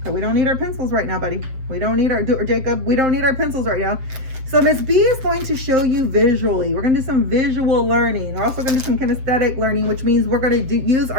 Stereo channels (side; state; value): left; late; 7.5 ms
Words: we don't need our pencils right now, buddy. We don't need our, or Jacob, we don't need our pencils right now. So Miss B is going to show you visually. We're going to do some visual learning. We're also going to do some kinesthetic learning, which means we're going to use